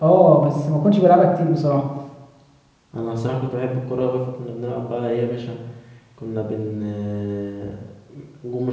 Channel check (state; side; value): identical; both; correlation 1.00